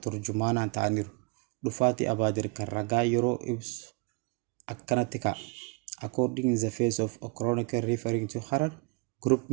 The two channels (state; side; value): quieter; left; 30.9 dB